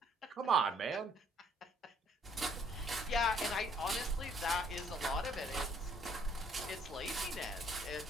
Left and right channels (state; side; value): normal; both; correlation 0.64